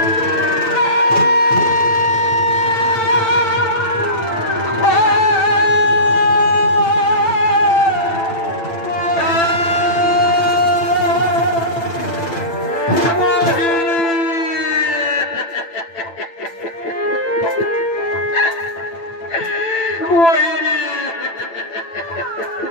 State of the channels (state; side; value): late; right; 9.0 ms